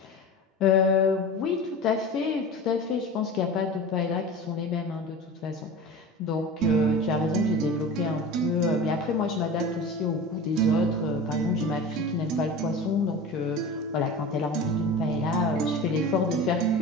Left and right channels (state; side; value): normal; both; correlation 0.33